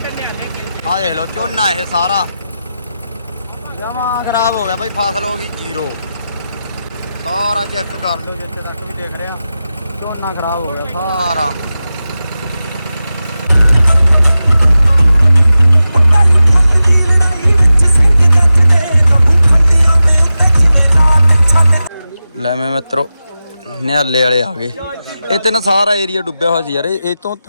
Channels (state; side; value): inverted; both; correlation -0.93